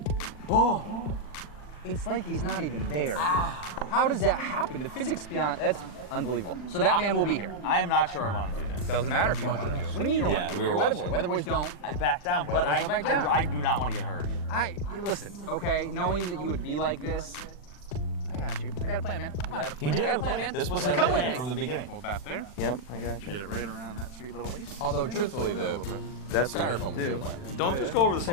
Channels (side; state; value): right; late; 40 ms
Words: Oh, it's like he's not even there. How does that happen? The physics beyond, that's unbelievable. So that man will be here. I am not sure I want to do this. Doesn't matter if you want to do it. What do you mean you don't want to do it? we were You're a Weatherboy. watching. Weatherboys don't. I back down, but Weatherboys don't back down. I do not want to get hurt. Listen, okay, knowing that you would be like this, I got you. I got a plan, man. Come on. He did I got have a plan, man. This was Come his with plan me. from the beginning. Hold that there. Yep, I got you. Get it right around that sweet little waist. Although, truthfully, the That's styrofoam was your plan. Don't just go over the